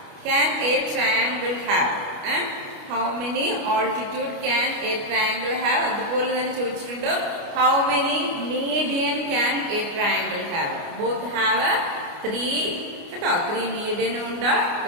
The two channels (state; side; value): late; left; 29 ms